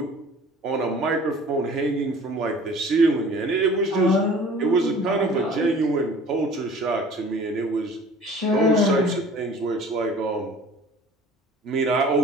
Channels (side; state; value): both; normal; correlation 0.46